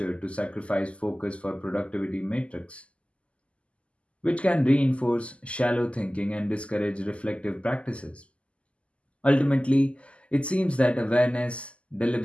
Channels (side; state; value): right; late; 0.057 ms